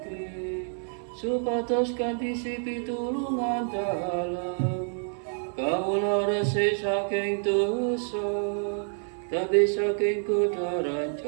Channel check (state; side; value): silent; left; 59 dB below the other